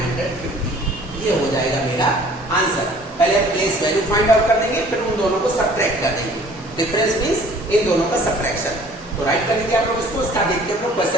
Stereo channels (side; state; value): both; normal; correlation 0.52